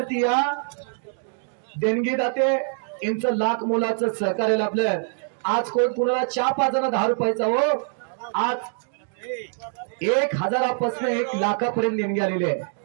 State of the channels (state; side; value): silent; left; digital silence